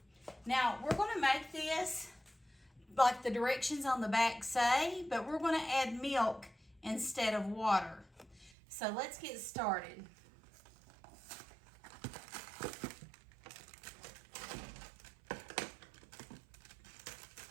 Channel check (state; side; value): drops out; left; at 8.5 s